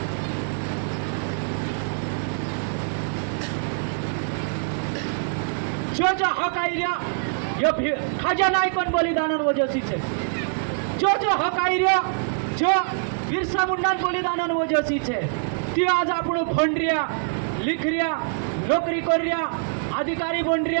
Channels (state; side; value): silent; left; digital silence